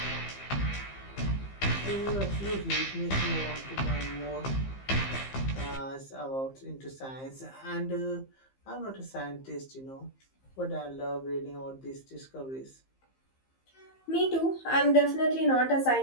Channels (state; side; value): late; right; 15 ms